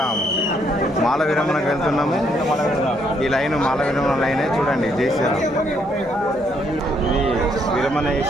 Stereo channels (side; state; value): both; normal; correlation 0.71